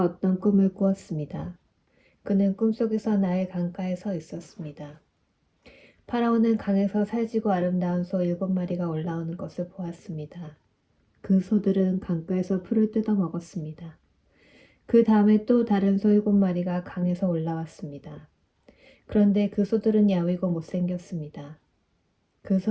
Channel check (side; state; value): both; identical; correlation 1.00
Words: 어떤 꿈을 꾸었습니다. 그는 꿈속에서 나일 강가에 서 있었습니다. 파라오는 강에서 살지고 아름다운 소 7마리가 올라오는 것을 보았습니다. 그 소들은 강가에서 풀을 뜯어 먹었습니다. 그 다음에 또 다른 소 7마리가 강에서 올라왔습니다. 그런데 그 소들은 야위고 못생겼습니다. 그